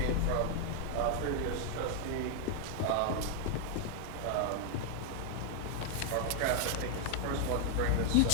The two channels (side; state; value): both; different; correlation 0.00